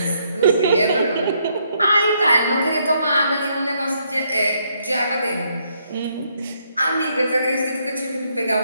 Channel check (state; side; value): inverted; both; correlation -0.73